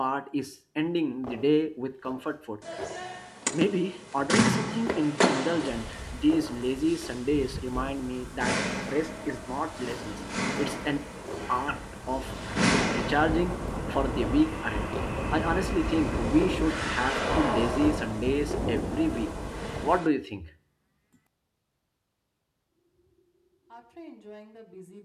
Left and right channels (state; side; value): identical; both; correlation 1.00